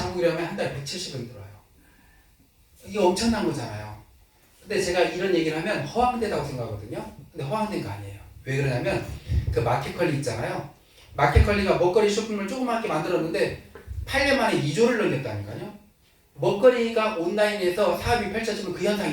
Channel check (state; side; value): identical; both; correlation 1.00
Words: 한 달에 170원 들어와요. 이게 엄청난 거잖아요. 근데 제가 이런 얘기를 하면 허황되다고 생각하거든요. 근데 허황된 거 아니에요. 왜 그러냐면 그 마켓컬리 있잖아요. 마켓컬리가 먹거리 쇼핑몰 조그맣게 만들었는데 8년 만에 2조를 넘겼다니까요. 먹거리가 온라인에서 사업이 펼쳐지면 그